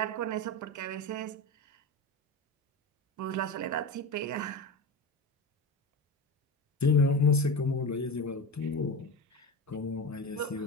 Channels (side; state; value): both; normal; correlation 0.25